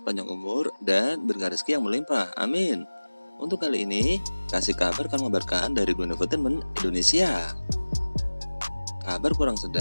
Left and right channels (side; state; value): both; inverted; correlation -1.00